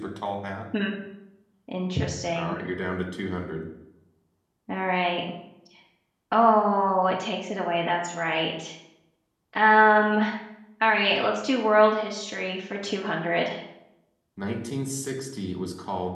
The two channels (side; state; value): both; identical; correlation 1.00